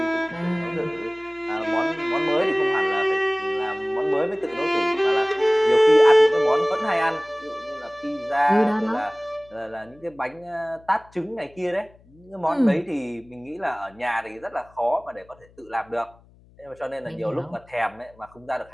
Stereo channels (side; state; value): left; noise; hum, 28 dB below the sound